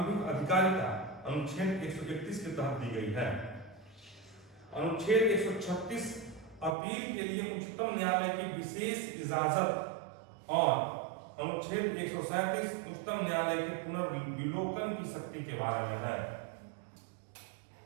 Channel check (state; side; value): drops out; left; at 6.8 s